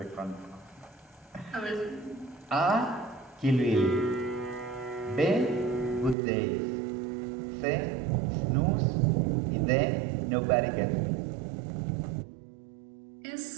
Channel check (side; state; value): left; drops out; at 6.2 s